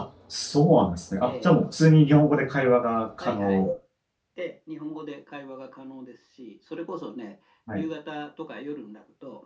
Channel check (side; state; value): both; identical; correlation 1.00